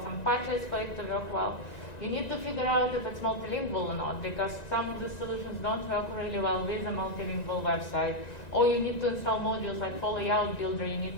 some patches for it to work well. You need to figure out if it's multilingual or not, because some of the solutions don't work really well with a multilingual website. Or you need to install modules like for layout builder, you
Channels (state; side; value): late; right; 1.9 ms